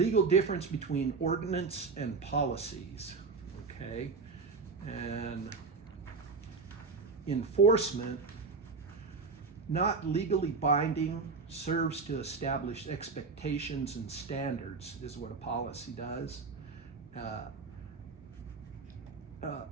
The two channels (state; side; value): quieter; left; 4.5 dB